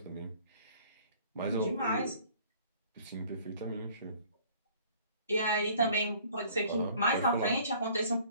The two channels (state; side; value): inverted; both; correlation -0.54